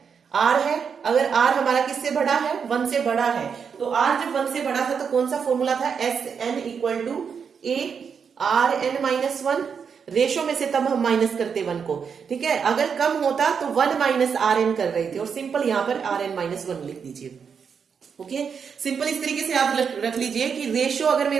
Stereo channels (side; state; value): left; quieter; 6.5 dB